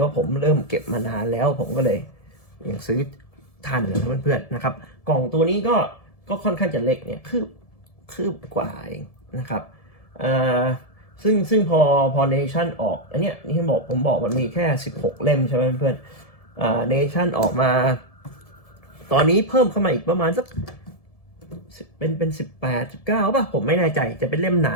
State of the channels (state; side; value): late; right; 1.7 ms